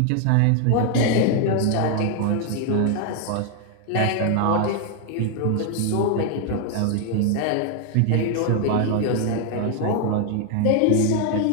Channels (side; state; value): both; different; correlation 0.00